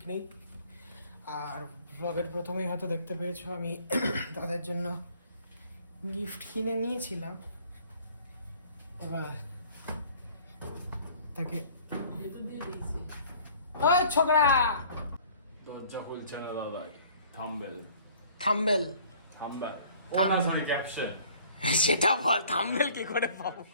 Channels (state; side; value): inverted; both; correlation -0.53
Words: নেই। আর ব্লগের প্রথমেই হয়তো দেখতে পেয়েছো আমি তাদের জন্য গিফট কিনে নিয়েছিলাম। এবার তাকে ওই ছোকরা দরজা খুলছে না দাদাই। Thumbnail thumbnail thumbnail thumbnail. Sorry caption. সেটা বল, থাম্বেল কি করে পাবো?